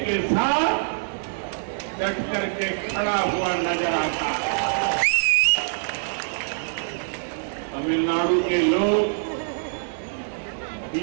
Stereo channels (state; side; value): silent; left; digital silence